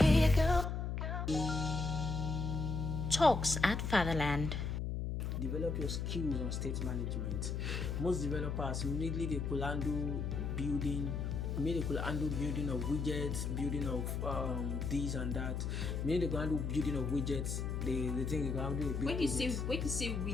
Talks at Fatherland. Develop your skills on state management. Most developers immediately they could handle building of widgets, building of this and that. Maybe they can handle building of widgets. They think they can handle a big when you say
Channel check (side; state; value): left; noise; hum, 2 dB below the sound